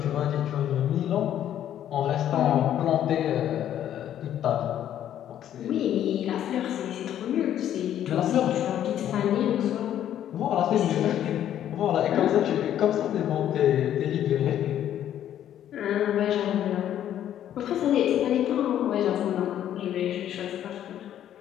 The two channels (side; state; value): right; quieter; 11.0 dB